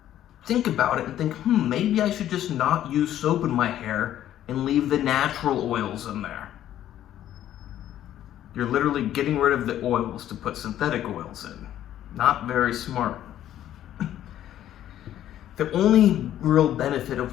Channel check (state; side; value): quieter; right; 11.9 dB